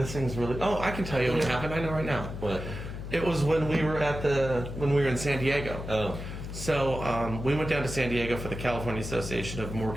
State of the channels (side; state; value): left; noise; hum, 8 dB below the sound